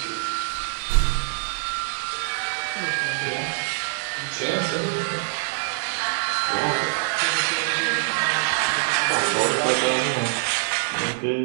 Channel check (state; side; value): silent; left; digital silence